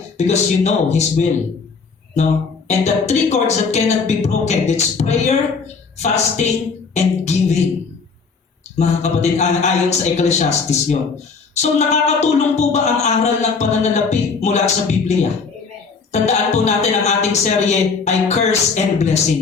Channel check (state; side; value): quieter; right; 4.9 dB